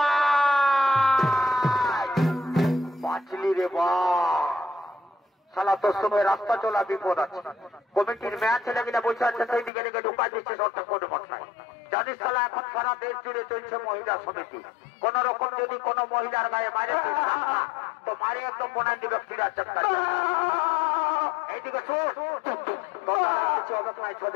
বাঁচলি রে বা শালা তোর সময় রাস্তা চলা বিপদ আছে কমিটির মেয়া ছেলেগুলা বসে আছে সেই দিকে দিকে ঢুকা দিচ্ছে ঠাকুর মশাই জানিস শালা এখন সারা দেশ জুড়ে চলছে মহিলা সমিতি কোন রকম যদি কোন মহিলার গায়ে মারে তো মারে একদম বোনাই দিবে ফিরা চাক্কা এইদিকে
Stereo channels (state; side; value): drops out; right; at 9.7 s